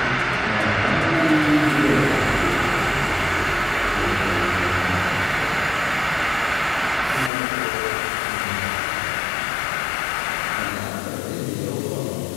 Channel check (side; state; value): right; drops out; at 7.3 s